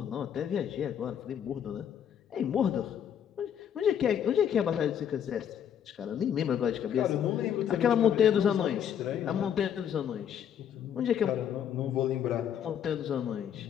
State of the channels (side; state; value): right; quieter; 9.1 dB